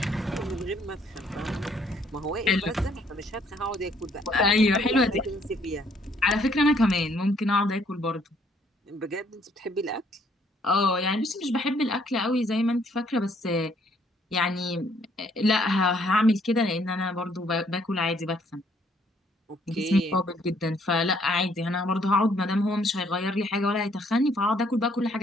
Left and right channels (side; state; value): both; normal; correlation 0.65